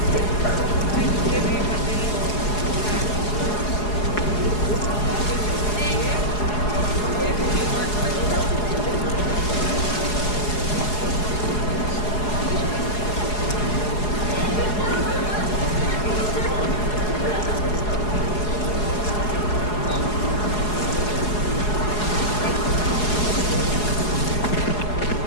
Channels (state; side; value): late; right; 4.8 ms